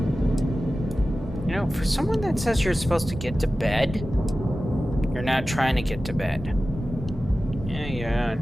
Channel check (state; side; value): normal; both; correlation 0.95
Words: You know, for someone that says you're supposed to get to bed, you're not trying to get to bed. Yeah,